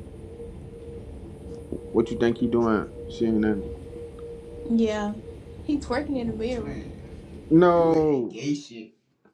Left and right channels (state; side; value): identical; both; correlation 1.00